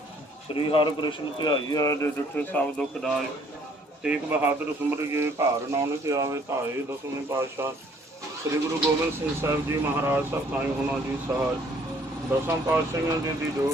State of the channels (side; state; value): both; normal; correlation 0.60